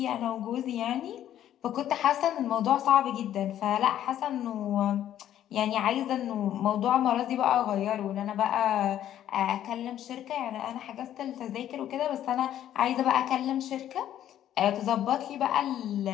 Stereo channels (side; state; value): right; quieter; 11.5 dB